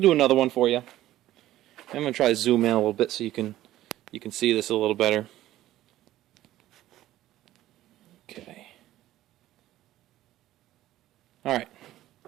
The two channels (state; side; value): quieter; left; 14.5 dB